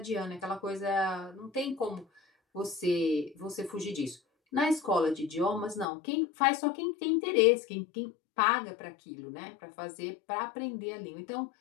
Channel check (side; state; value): right; drops out; at 5.9 s